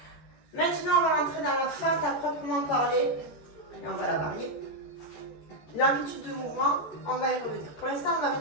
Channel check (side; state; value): right; late; 14 ms